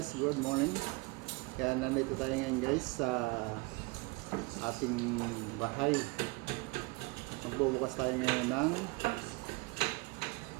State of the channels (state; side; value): quieter; left; 25.7 dB